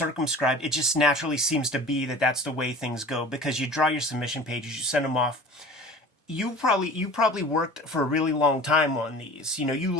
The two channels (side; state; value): both; normal; correlation 0.41